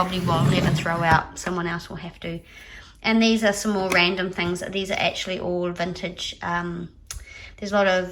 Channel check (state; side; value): identical; both; correlation 1.00